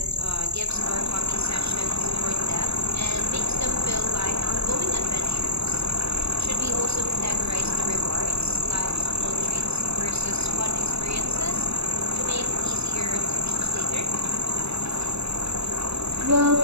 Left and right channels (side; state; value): left; late; 0.79 ms